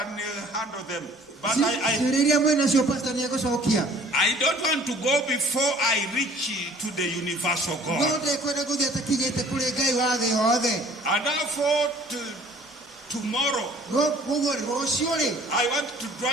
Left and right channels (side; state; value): both; normal; correlation 0.53